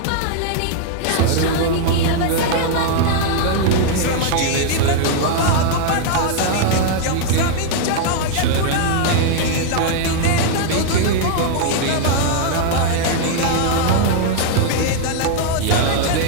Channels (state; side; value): different; both; correlation 0.00